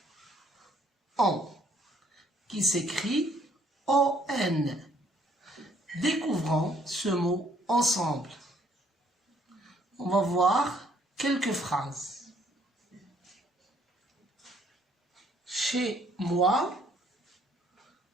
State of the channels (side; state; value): both; normal; correlation 0.64